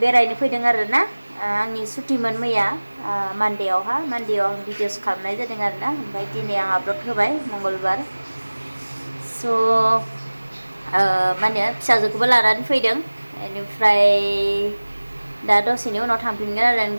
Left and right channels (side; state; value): both; inverted; correlation -1.00